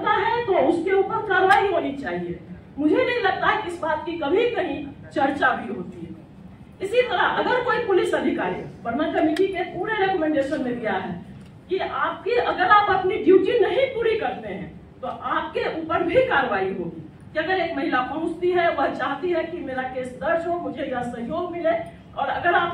है तो उसके ऊपर कार्रवाई होनी चाहिए। मुझे नहीं लगता है कि इस बात की कभी कहीं चर्चा भी होती है। इसी तरह अगर कोई पुलिस अधिकारी, वर्मा कमेटी के पूरे रिकमेंडेशन में दिया है कि आपकी, अगर आप अपनी ड्यूटी नहीं पूरी करते हैं तो आपके ऊपर भी कार्रवाई होगी। कि अगर एक महिला पहुंचती है, वह चाहती है कि मेरा केस दर्ज हो, मुझे यह सहयोग मिले, और अगर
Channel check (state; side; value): identical; both; correlation 1.00